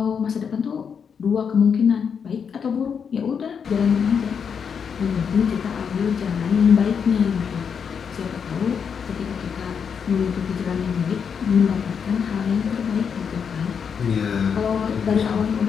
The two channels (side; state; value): right; quieter; 6.8 dB